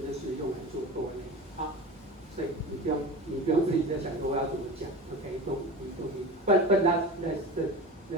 就是用来做多类。好，所以你不用自己在想说我要怎么讲。OK， don't But that's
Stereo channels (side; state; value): both; normal; correlation 0.31